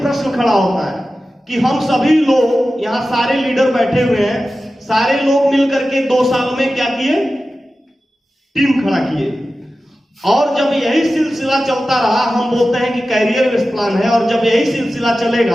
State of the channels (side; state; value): both; normal; correlation 0.94